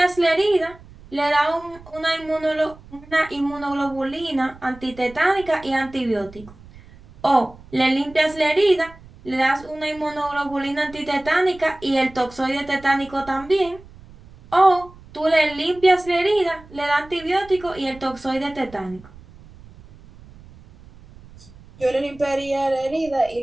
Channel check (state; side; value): noise; right; rumble, 21 dB below the sound